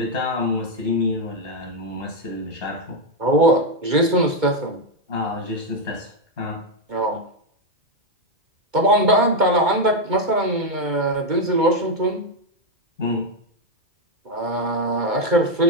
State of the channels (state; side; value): late; left; 2.2 ms